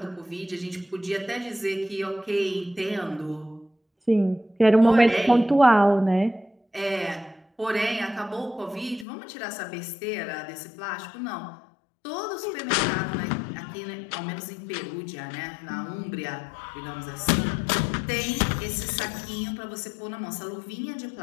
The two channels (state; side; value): drops out; right; at 9.1 s